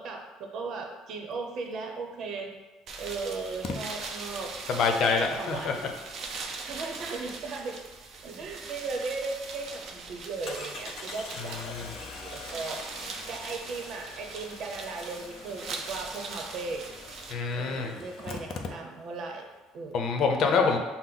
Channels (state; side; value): normal; both; correlation 0.55